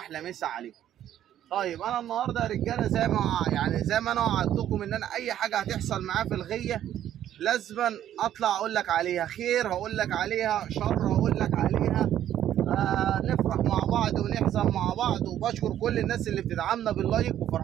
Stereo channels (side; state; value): left; quieter; 11.3 dB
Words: مسا عليكم. طيب انا النهارده يا رجالة زي ما انا وعدتكم ان انا اي حاجة هتحصل معايا في الغية لازما اطلع اقول لك عليها، خير هقول لك عليها، شر هقول لك عليها. نفرح مع بعض ونحزن مع بعض. وبشكر كل الناس اللي بتدعمنا باللايك،